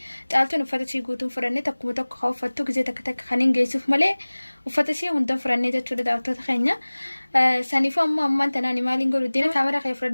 جالتون وفاتسي قوتون فراني تكومو تكو خوفتو كزي تك خانين جيسوف مالي وفاتسي هندن فراني جتو دا داوتو تخينيا سانيفو أمان تناني مالين قولو دينا كاميرا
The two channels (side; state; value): both; inverted; correlation -1.00